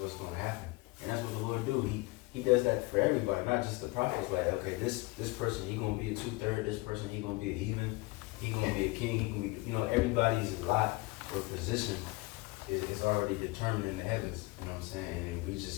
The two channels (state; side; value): quieter; right; 23.5 dB